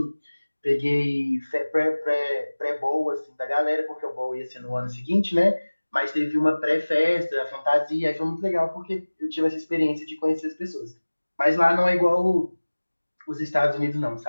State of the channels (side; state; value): both; inverted; correlation -1.00